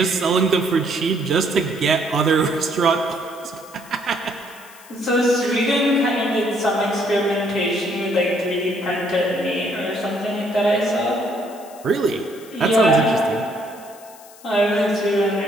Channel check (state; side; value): noise; left; hiss, 22 dB below the sound